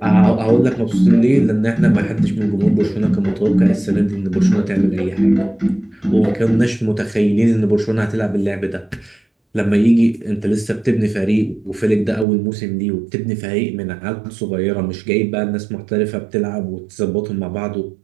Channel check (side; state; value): left; drops out; at 12.2 s